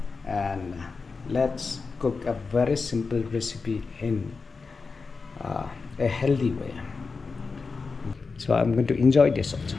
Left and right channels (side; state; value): right; quieter; 4.5 dB